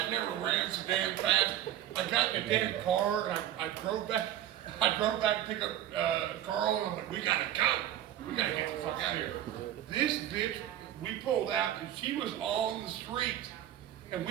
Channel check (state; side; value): quieter; left; 12.0 dB